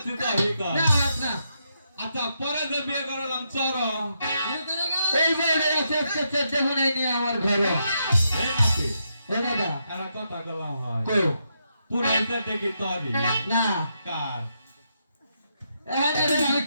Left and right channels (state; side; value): inverted; both; correlation -0.81